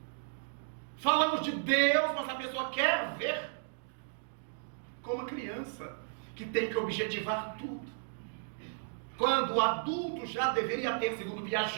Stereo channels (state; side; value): silent; left; digital silence